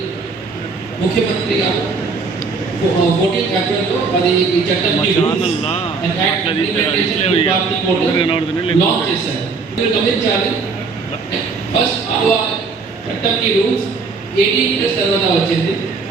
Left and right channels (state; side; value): quieter; left; 4.5 dB